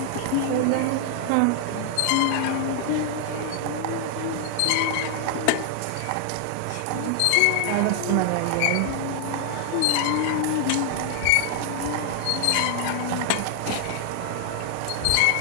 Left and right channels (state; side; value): different; both; correlation 0.00